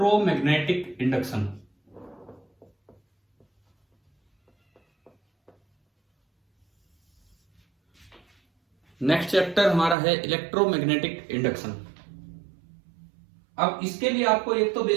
induction. Next chapter हमारा है इलेक्ट्रोमैग्नेटिक इंडक्शन। अब इसके लिए आपको एक तो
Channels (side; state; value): left; drops out; at 10.0 s